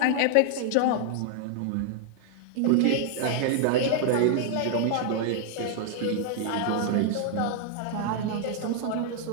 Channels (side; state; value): both; different; correlation 0.00